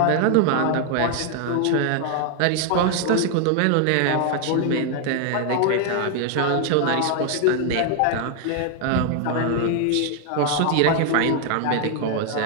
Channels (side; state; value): both; different; correlation 0.00